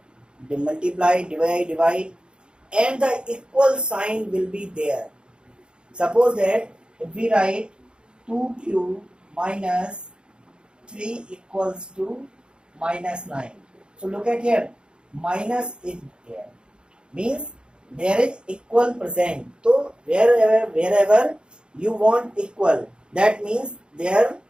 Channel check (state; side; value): late; left; 0.052 ms